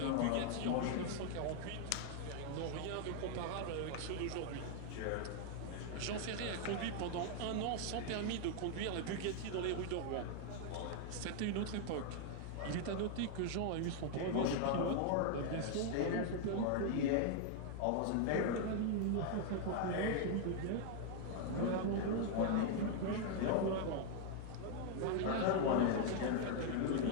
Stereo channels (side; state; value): both; different; correlation 0.00